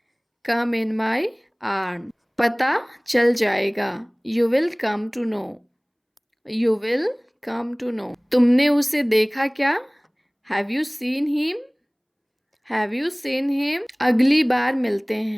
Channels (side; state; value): both; identical; correlation 1.00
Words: Come in my arm. पता चल जाएगा। You will come to know. You will come to know. तुमने उसे देखा क्या? Have you seen him? Have you seen him? अगली बार मिलते